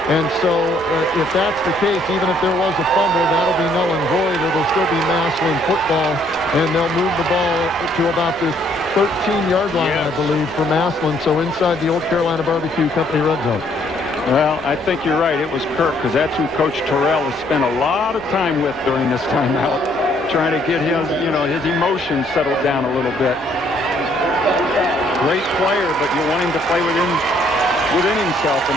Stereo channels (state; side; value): normal; both; correlation 0.66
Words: And so if that's the case, even if there was a fumble, that'll be null and void. It'll still be Massillon football, and they'll move the ball to about the 13-yard line, I believe, for Massillon. So inside the Old Carolina Barbecue Company red zone. Well, I think you're right. It was Kirk, because that's who Coach Terrell has spent a lot of time with during this timeout, trying to get his emotions settled down a little bit. Great player, but you want him to play within himself and